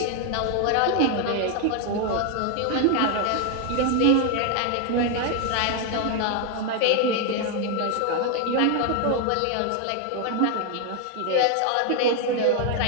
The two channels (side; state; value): both; different; correlation 0.00